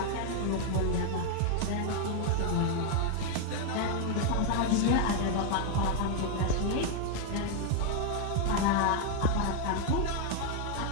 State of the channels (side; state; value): both; different; correlation 0.00